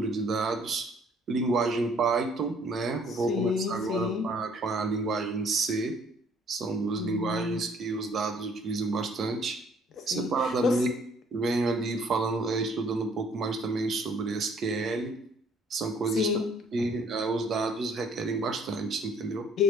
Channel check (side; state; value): both; normal; correlation 0.61